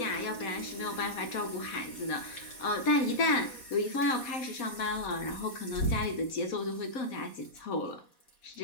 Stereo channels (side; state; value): right; late; 4.1 ms